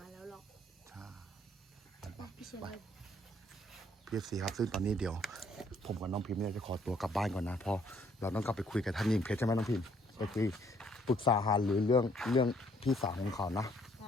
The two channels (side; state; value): both; normal; correlation 0.65